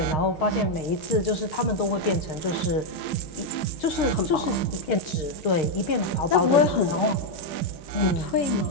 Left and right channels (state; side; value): late; right; 6.5 ms